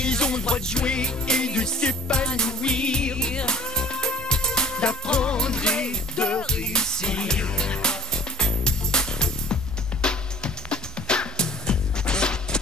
ont le droit de jouer et de s'épanouir, d'apprendre et de réussir.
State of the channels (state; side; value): normal; both; correlation 0.47